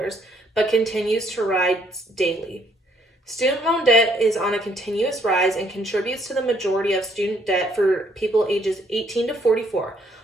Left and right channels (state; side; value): normal; both; correlation 0.68